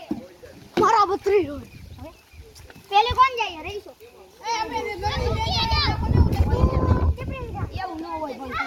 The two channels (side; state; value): both; identical; correlation 1.00